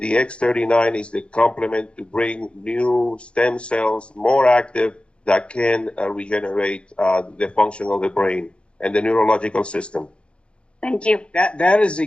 X39 is the complement to bring new stem cells, more active, that can regenerate the function of the brain and the neurological system. Thank you. That is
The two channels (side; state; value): right; late; 0.058 ms